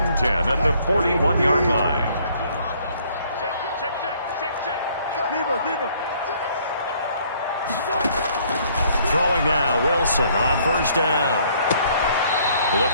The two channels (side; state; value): both; inverted; correlation -0.62